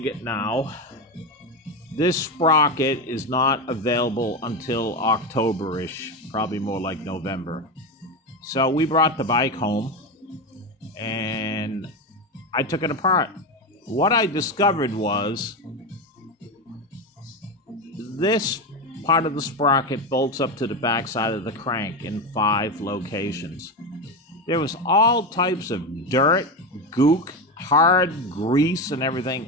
now, this sprocket is not available until October-ish, probably more like November. So we brought the bike home and I took it apart. What I discovered was this part of the sprocket bolts up to the backside of the crank in 5 locations. There was all types of dirt, gook, hard grease and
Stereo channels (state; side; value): normal; both; correlation 0.16